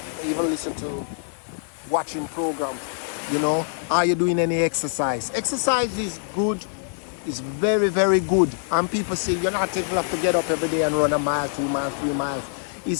Even listen to watching programs, you know, are you doing any exercise? Exercise is good, it's very, very good. And people say you're not able to get up every day and run a mile, 2 miles, 3 miles.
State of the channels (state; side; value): silent; right; 62 dB below the other